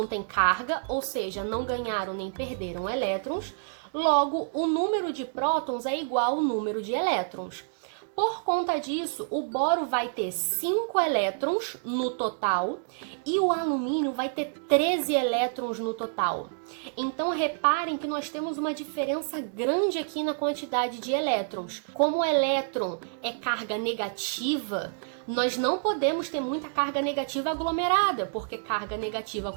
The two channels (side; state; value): left; silent; digital silence